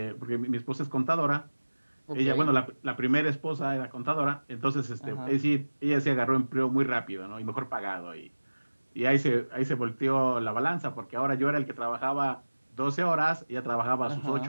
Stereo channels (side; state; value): both; inverted; correlation -1.00